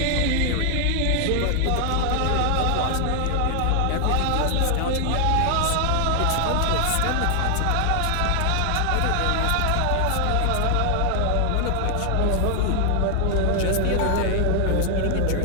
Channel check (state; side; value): different; both; correlation 0.00